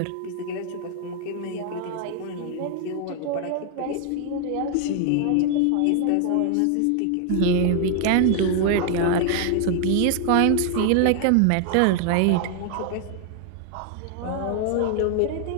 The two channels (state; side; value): different; both; correlation 0.00